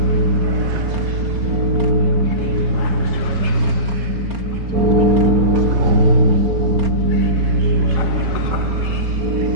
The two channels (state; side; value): late; left; 4.3 ms